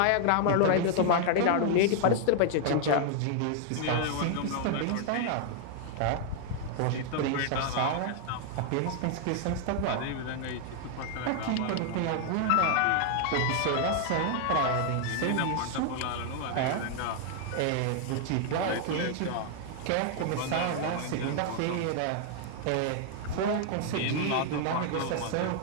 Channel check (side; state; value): both; different; correlation 0.00